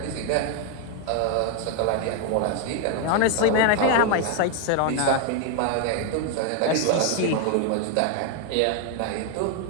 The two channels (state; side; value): different; both; correlation 0.00